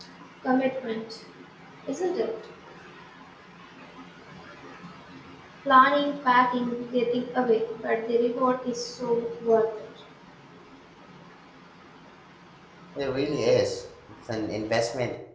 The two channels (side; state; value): both; identical; correlation 1.00